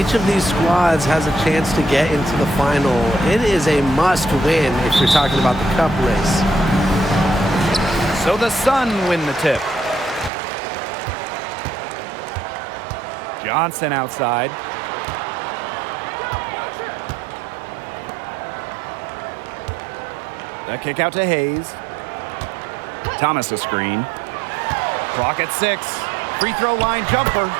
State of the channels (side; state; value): left; drops out; at 10.3 s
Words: of these squads has a chance to get into the final. It is a must-win if you're talking about the cup race. So the Sun win the tip. Johnson outside. The kick out to Hayes. Thomas a screen. Clock at 6. Free throw line jumper.